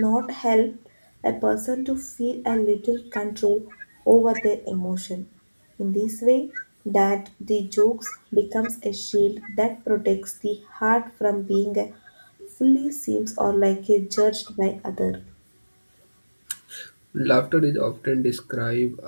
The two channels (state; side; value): inverted; both; correlation -1.00